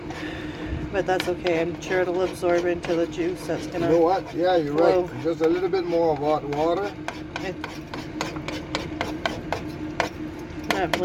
But that's okay. I'm sure it'll absorb into the juice that's gonna. You know what? Yeah, you're right. Just a little bit more of hot water. I can't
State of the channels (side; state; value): both; identical; correlation 1.00